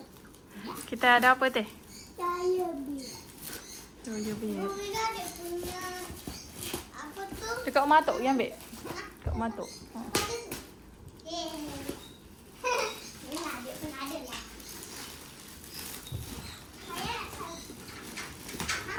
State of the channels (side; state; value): both; identical; correlation 1.00